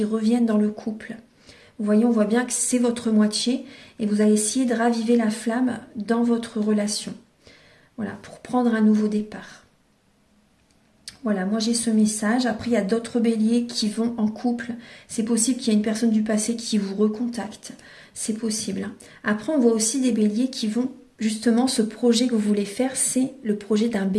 reviennent dans le couple. Vous voyez, on voit bien que c'est votre moitié et vous allez essayer de raviver la flamme dans votre relation. Voilà, pour prendre un nouveau départ. Voilà, moi j'ai ce message. Après, il y a d'autres béliers qui vont en couple. C'est possible qu'il y ait une personne du passé qui vous recontacte. C'est possible. Après, on voit aussi des béliers qui vont, justement, ce projet que vous voulez faire, c'est le projet d'un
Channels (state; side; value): identical; both; correlation 1.00